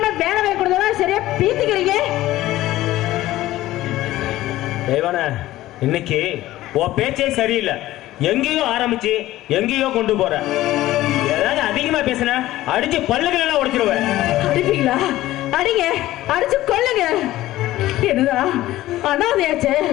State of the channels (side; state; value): right; quieter; 15.6 dB